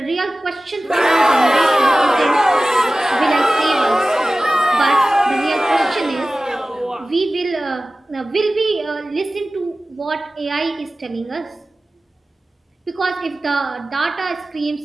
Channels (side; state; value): both; normal; correlation 0.96